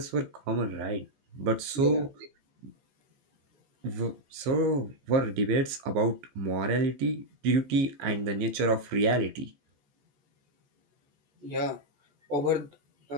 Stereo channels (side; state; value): left; late; 15 ms